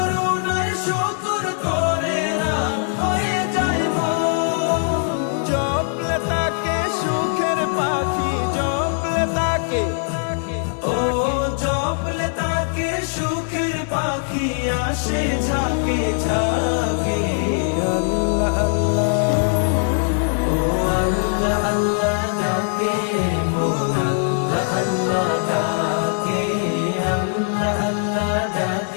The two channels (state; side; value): silent; right; digital silence